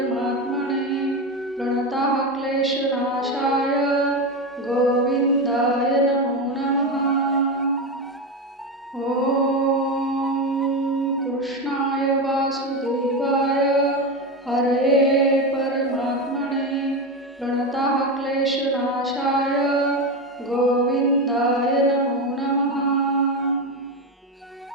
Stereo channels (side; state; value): both; normal; correlation 0.16